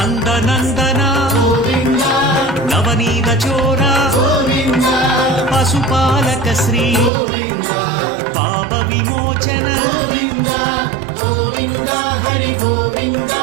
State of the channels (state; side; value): drops out; left; at 7.1 s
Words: గోవింద నవనీత చోర గోవింద పశుపాలక శ్రీ గోవింద పాప విమోచన గోవింద గోవింద హరి గోవింద